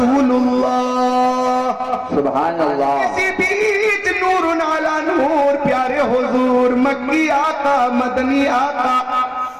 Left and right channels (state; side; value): identical; both; correlation 1.00